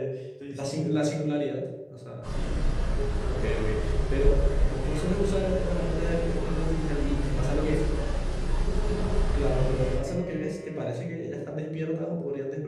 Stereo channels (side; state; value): both; identical; correlation 1.00